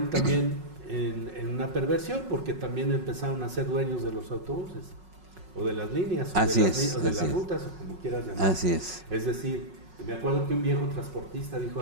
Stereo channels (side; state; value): left; late; 5.4 ms